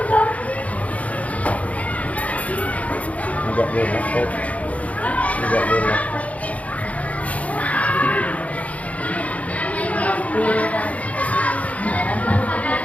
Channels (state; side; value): late; right; 0.068 ms